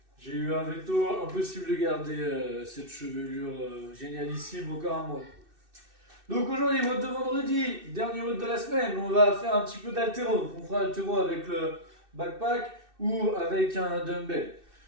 Impossible de garder cette chevelure génialissime encore un mois. Donc aujourd'hui, mode de vendredi, dernier mode de la semaine, on va faire un petit peu d'haltéro, on fera haltéro avec le backpack ou avec un dumbbell.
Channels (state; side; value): late; left; 2.6 ms